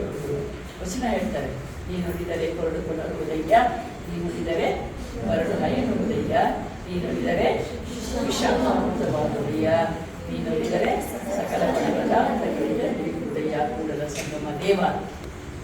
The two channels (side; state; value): both; identical; correlation 1.00